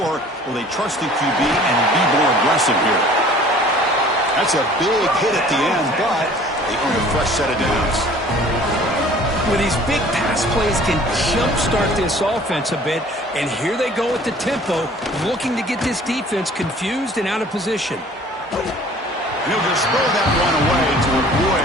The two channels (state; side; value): normal; both; correlation 0.50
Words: will they trust the QB and be more aggressive here? That's a big hit at the end, but they earn a fresh set of downs. Well, these big pass plays can jumpstart this offense a bit, and here they go at the tempo, looking to get this defense confused and out of position. And he'll just throw that one away to avoid